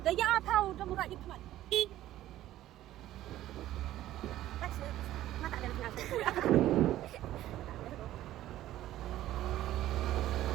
Da ya thau da murat ik man. Mata ada nak.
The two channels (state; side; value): quieter; left; 14.0 dB